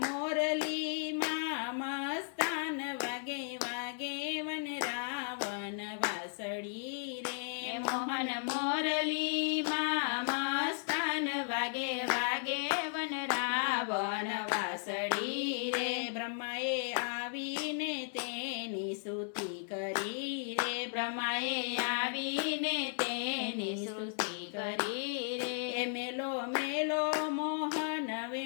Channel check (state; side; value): silent; right; digital silence